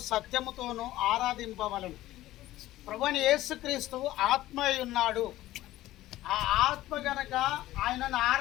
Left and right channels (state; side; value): quieter; right; 15.6 dB